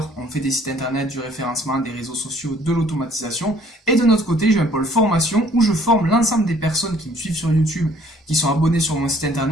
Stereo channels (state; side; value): normal; both; correlation 0.58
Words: On fait des sites internet, du référencement, des réseaux sociaux, de l'automatisation. Et de notre côté, j'ai un pôle formation où je forme l'ensemble des personnes qui me suivent sur YouTube, qui sont abonnées sur mon site